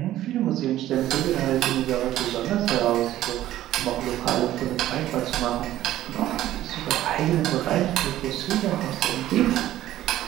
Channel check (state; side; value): quieter; left; 13.7 dB